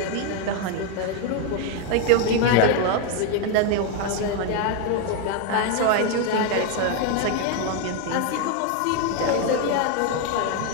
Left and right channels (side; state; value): both; different; correlation 0.01